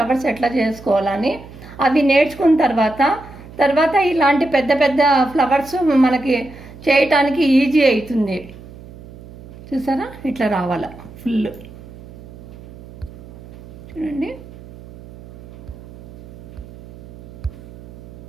ఎట్లా చేసుకోవాలని. అవి నేర్చుకున్న తర్వాత ఇలాంటి పెద్ద పెద్ద ఫ్లవర్స్ మనకి చేయటానికి ఈజీ అవుతుంది. చూసారా ఇట్లా రావాల ఫుల్. చూడండి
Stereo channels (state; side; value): noise; right; hum, 18 dB below the sound